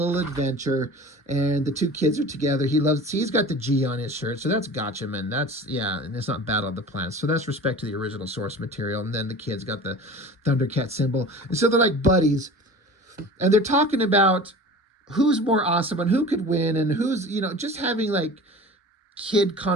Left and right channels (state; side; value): normal; both; correlation 0.38